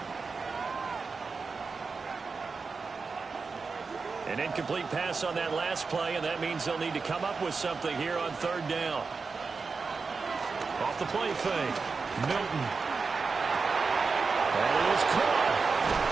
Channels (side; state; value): left; quieter; 4.7 dB